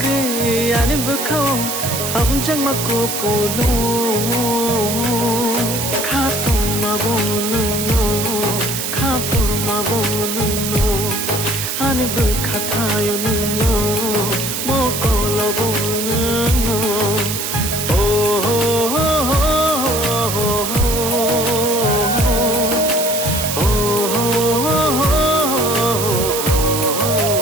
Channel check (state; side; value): noise; right; hiss, 3 dB below the sound